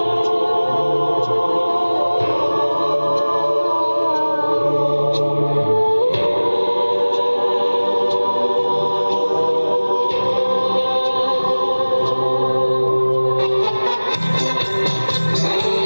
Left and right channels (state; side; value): inverted; both; correlation -1.00